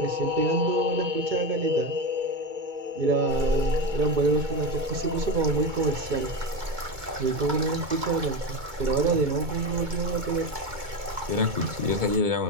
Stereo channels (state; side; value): late; left; 2.2 ms